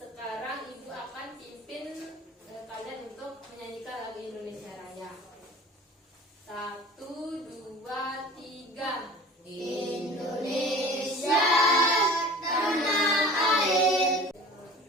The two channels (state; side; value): normal; both; correlation 0.41